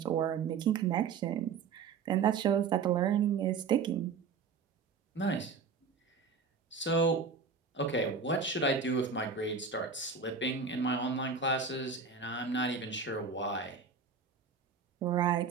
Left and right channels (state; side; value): quieter; left; 5.4 dB